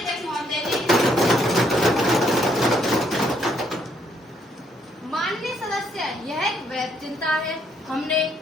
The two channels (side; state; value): both; normal; correlation 0.70